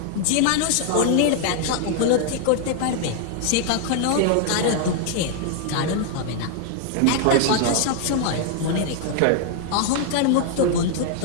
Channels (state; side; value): different; both; correlation 0.00